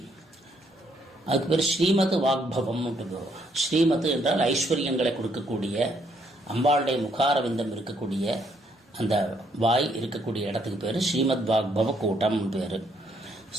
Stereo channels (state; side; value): normal; both; correlation 0.71